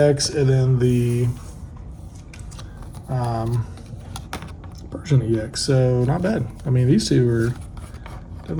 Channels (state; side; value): identical; both; correlation 1.00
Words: and then the Persian EX. So not bad. I mean, these two are